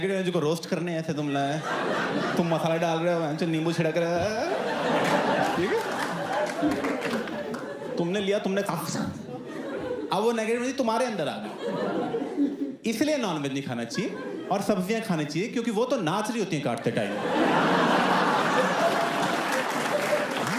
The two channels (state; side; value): identical; both; correlation 1.00